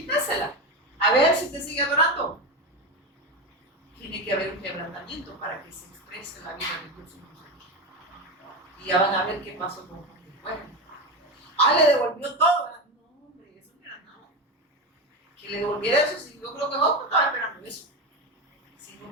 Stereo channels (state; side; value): normal; both; correlation 0.18